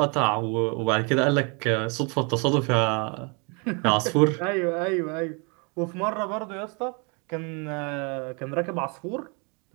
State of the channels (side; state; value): left; quieter; 33.4 dB